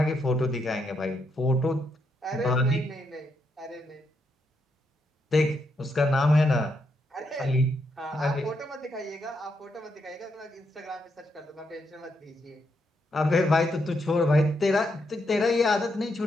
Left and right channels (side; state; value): both; normal; correlation 0.79